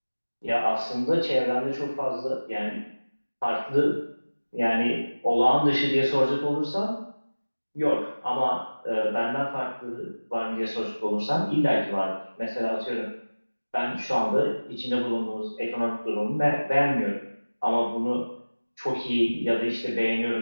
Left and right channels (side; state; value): both; inverted; correlation -1.00